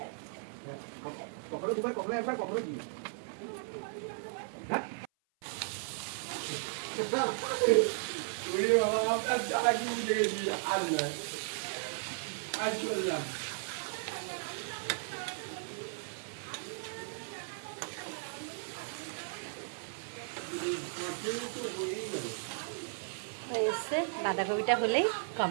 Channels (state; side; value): silent; left; 54 dB below the other